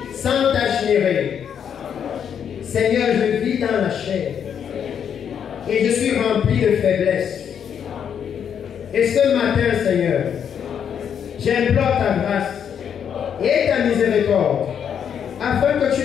sans tache ni règle. Seigneur, je vis dans la chair et je suis rempli de faiblesse. Et ce matin, Seigneur, j'implore ta grâce et ta miséricorde afin que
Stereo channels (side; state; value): right; quieter; 8.2 dB